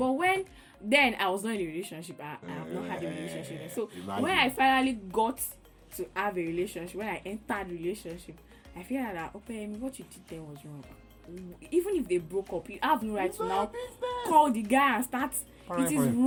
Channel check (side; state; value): both; identical; correlation 1.00